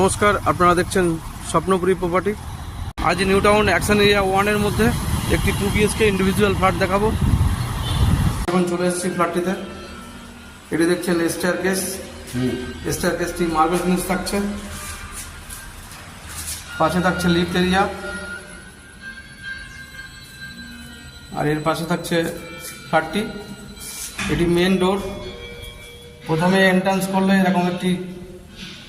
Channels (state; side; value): identical; both; correlation 1.00